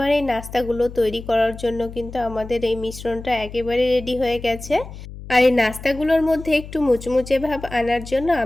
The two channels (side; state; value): left; noise; hum, 13 dB below the sound